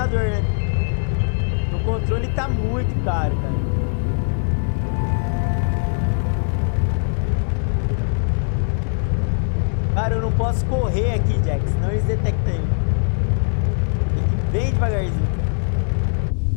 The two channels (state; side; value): silent; right; digital silence